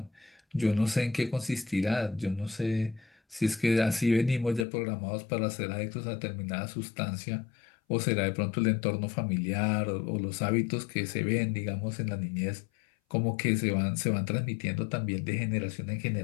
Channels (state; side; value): drops out; right; at 4.7 s